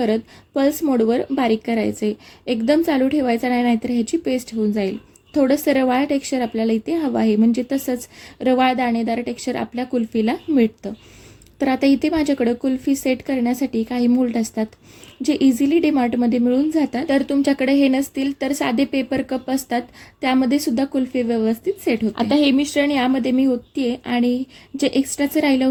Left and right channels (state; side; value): identical; both; correlation 1.00